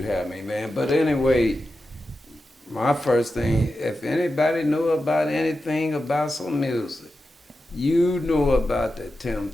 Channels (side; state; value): both; normal; correlation 0.91